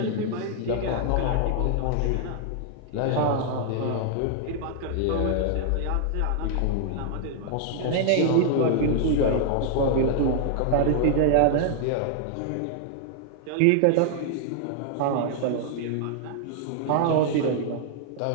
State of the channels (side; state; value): both; different; correlation 0.00